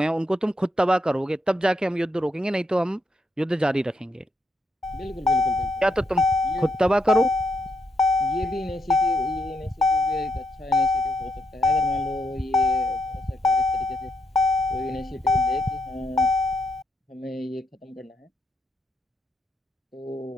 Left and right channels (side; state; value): both; normal; correlation 0.78